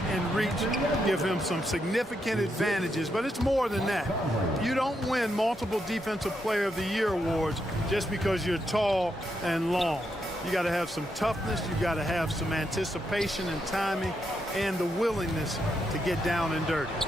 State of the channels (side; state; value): both; normal; correlation 0.81